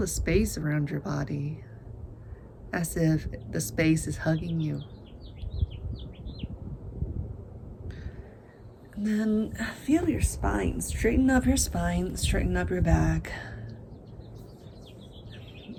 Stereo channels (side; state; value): both; identical; correlation 1.00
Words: space around your body as if the space is hugging you. And then feel your spine. Straighten up your spine, straighten up your back.